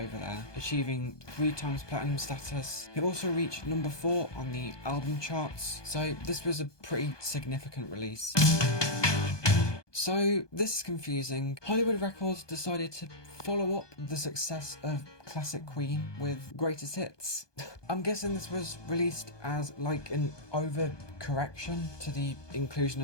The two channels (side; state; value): right; late; 1.2 ms